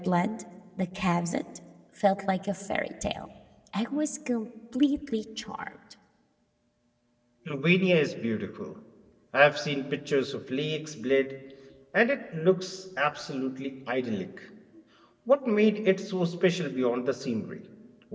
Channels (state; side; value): identical; both; correlation 1.00